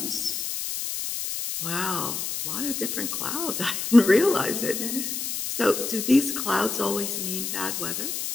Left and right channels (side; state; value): left; noise; hiss, 3 dB below the sound